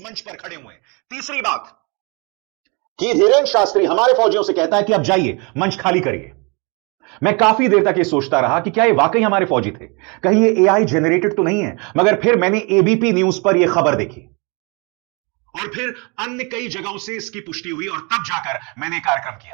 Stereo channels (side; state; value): left; quieter; 31.0 dB